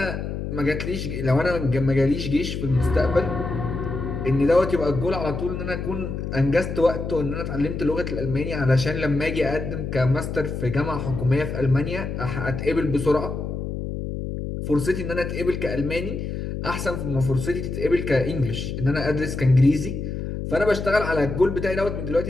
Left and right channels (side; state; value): left; noise; hum, 5 dB below the sound